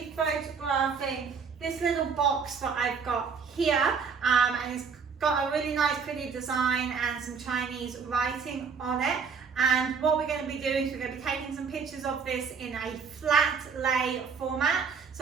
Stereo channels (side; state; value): left; quieter; 5.8 dB